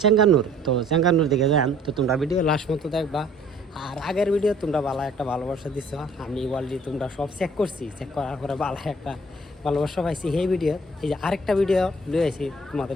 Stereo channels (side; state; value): both; normal; correlation 0.56